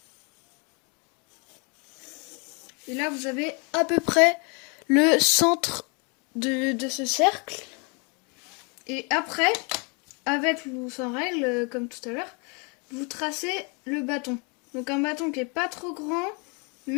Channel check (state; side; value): quieter; right; 33.4 dB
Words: Et là, vous avez à peu près le centre de ce cercle. Et après, avec ou sans règle, comme tout à l'heure, vous tracez le bâton. Donc un bâton qui est pas trop grand,